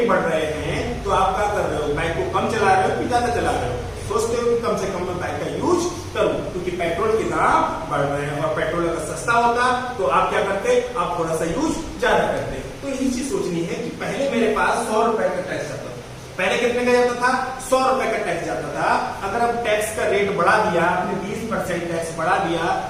बढ़ रहे हैं तो आप क्या कर रहे हो, बाइक को कम चला रहे हो कि ज्यादा चला रहे हो, सोचते हो कि कम से कम मैं बाइक का यूज करूं, क्योंकि पेट्रोल के दाम बढ़ रहे हैं, और पेट्रोल अगर सस्ता होता तो आप क्या करते, आप थोड़ा सा यूज ज्यादा करते। तो यही चीज सोचनी है कि पहले मेरे पास 100 रुपए का टैक्स आता था, पहले कितने का जाता था, 100 रुपए का टैक्स जाता था, अगर अब टैक्स का रेट बढ़ा दिया, आपने 20% टैक्स बढ़ा दिया,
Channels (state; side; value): identical; both; correlation 1.00